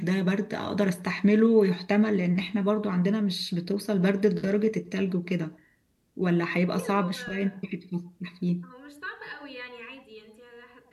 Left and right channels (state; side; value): identical; both; correlation 1.00